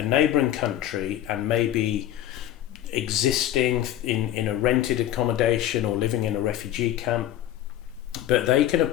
neighbouring country and maybe existing in a rented accommodation or living in a refugee camp. But they can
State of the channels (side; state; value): right; quieter; 12.3 dB